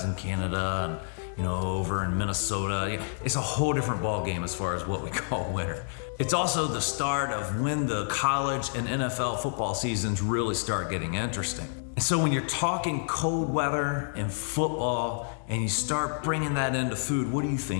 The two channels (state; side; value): silent; right; 59 dB below the other